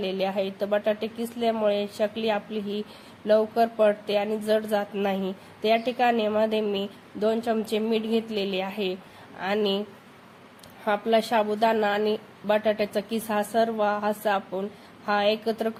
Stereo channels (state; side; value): identical; both; correlation 1.00